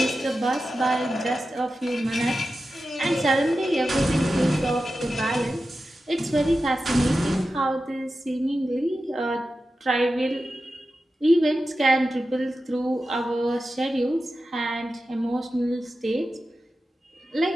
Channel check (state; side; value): normal; both; correlation 0.92